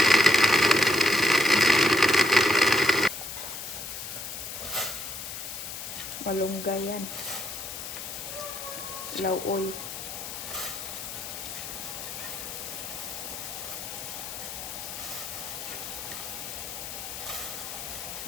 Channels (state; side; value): noise; left; hiss, 8 dB below the sound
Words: Malunggay yan. Lauoy.